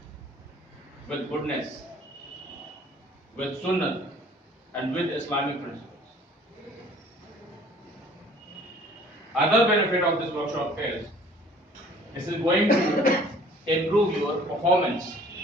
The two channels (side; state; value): both; normal; correlation 0.52